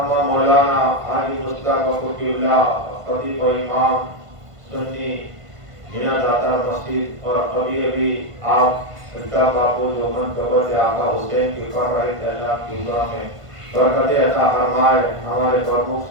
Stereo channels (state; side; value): late; left; 1.5 ms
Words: مولانا حاجی مصطفیٰ فقی اللہ خطیب و امام سنی مینا داتا مسجد، اور ابھی آپ الطاف باپو جو منقبت آقا حسین کی کر رہے تھے، اللہ کی دعا میں برکت عطا فرمائے۔ ہمارے پرمکھ